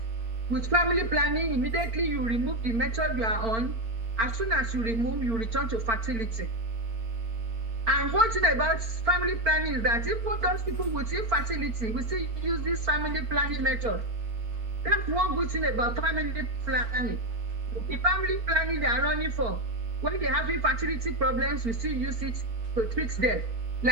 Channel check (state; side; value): late; left; 4.4 ms